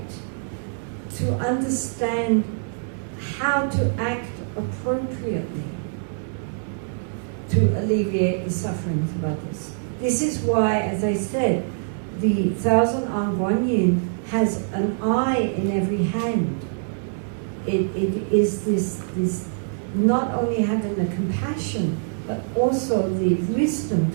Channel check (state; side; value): silent; left; 62 dB below the other